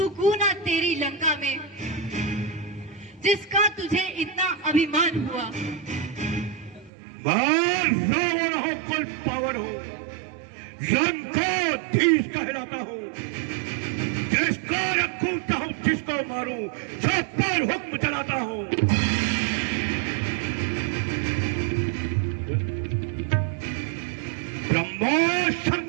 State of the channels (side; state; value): left; drops out; at 6.9 s